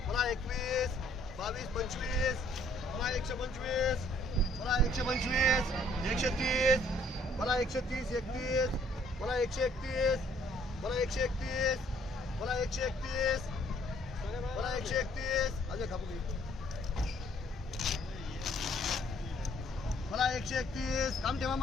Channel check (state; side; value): normal; both; correlation 0.62